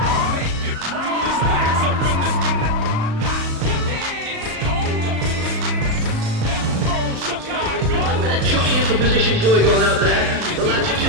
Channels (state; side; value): late; left; 36 ms